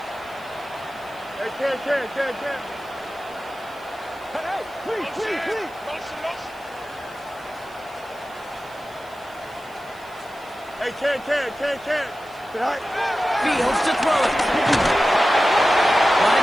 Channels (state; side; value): noise; left; hiss, 26 dB below the sound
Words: Hey, Ken. Hey, please. Hey, Ken. Tonight. Fields to throw it. A lot